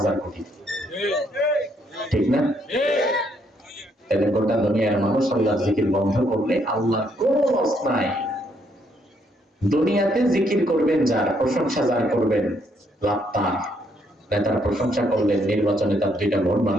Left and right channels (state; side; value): normal; both; correlation 0.71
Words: কোটি। ঠিক না? তাহলে গোটা দুনিয়ার মানুষ আল্লাহর জিকির বন্ধ করলে আল্লাহর কোনো লস নাই। দুনিয়াতে জিকির করবেন যার, প্রশংসা যার করবেন, লাভ তার। নেতার প্রশংসা করলেন, নির্বাচনে তার 2টা ভোট